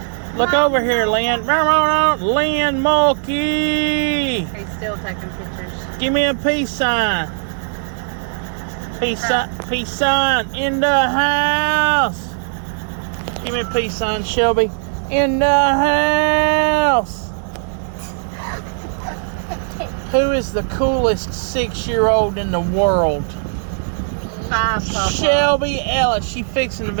Look over here, Lynn. Lynn Mulkey. He's still taking pictures. Give me a peace sign. Peace sign in the house. Give me a peace sign, Shelby. In the house. Who is the coolest 6-year-old in the world? 5, Papa. Shelby Ellis. She fixing to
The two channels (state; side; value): silent; left; digital silence